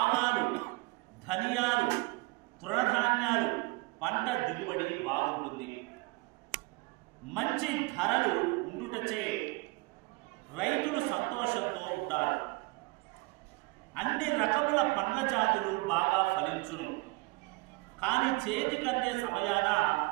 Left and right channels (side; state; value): left; quieter; 25.0 dB